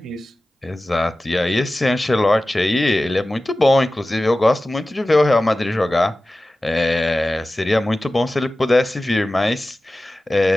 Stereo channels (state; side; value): normal; both; correlation 0.96